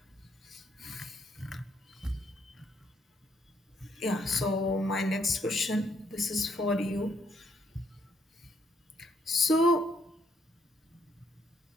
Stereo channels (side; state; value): both; normal; correlation 0.72